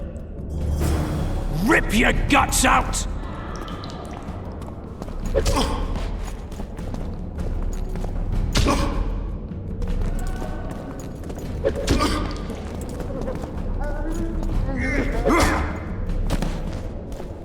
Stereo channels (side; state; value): both; identical; correlation 1.00